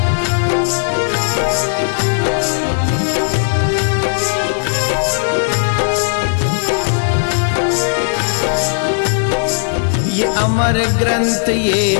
ये अमर ग्रंथ, ये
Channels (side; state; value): right; silent; digital silence